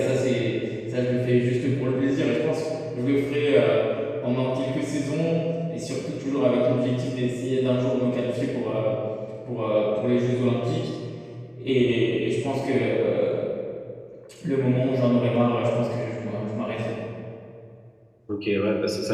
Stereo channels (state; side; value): identical; both; correlation 1.00